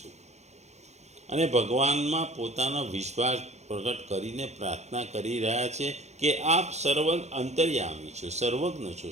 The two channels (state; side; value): late; left; 0.32 ms